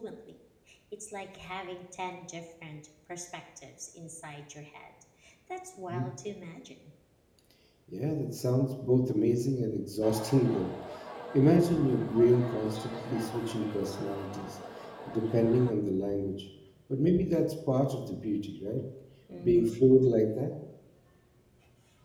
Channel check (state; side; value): identical; both; correlation 1.00